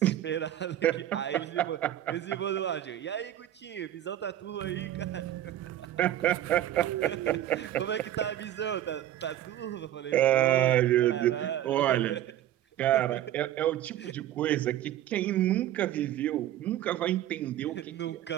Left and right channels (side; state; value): left; quieter; 12.5 dB